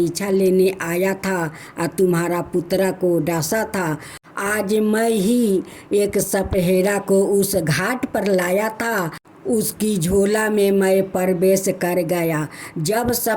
लेने आया था और तुम्हारा पुत्र को डांसा था। आज मैं ही एक सपहेरा को उस घाट पर लाया था, उसकी झोला में मैं प्रवेश कर गया। जब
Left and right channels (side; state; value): both; identical; correlation 1.00